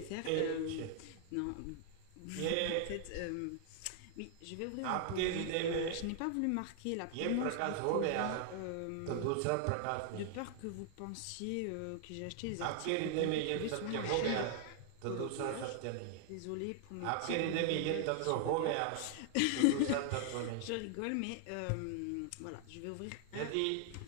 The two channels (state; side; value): different; both; correlation 0.00